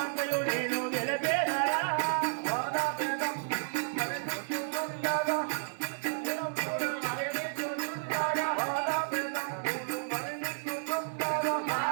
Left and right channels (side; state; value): left; silent; digital silence